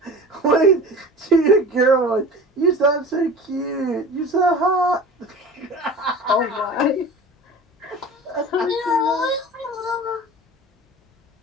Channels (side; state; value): both; normal; correlation 0.37